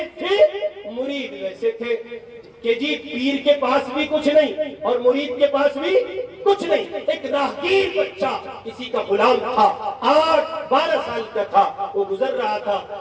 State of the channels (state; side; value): identical; both; correlation 1.00